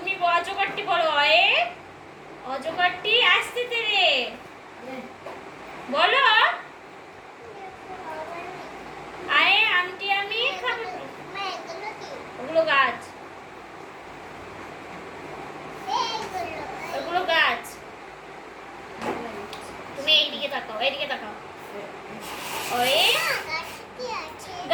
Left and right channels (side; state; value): both; identical; correlation 1.00